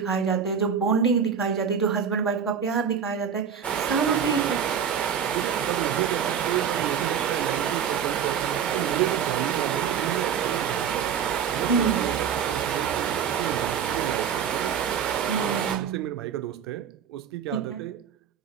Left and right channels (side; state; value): left; quieter; 7.6 dB